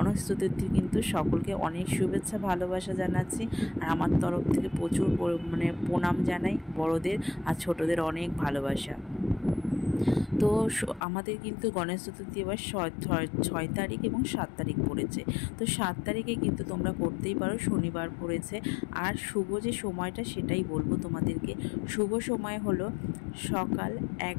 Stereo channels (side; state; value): right; drops out; at 11.0 s